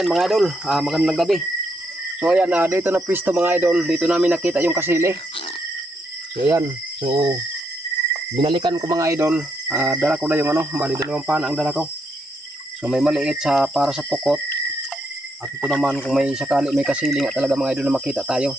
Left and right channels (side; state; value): both; normal; correlation 0.77